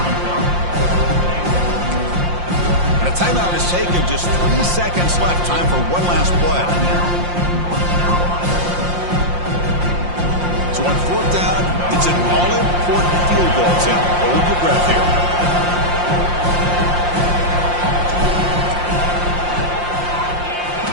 And a timeout is taken. Just 3 seconds left. Time for one last play. So on 4th down, it's an all-important field goal, Tim. Hold your breath here.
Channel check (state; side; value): late; left; 5.7 ms